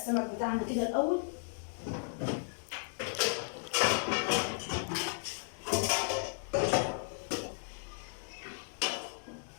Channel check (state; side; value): silent; right; digital silence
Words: بتاعنا كده الاول.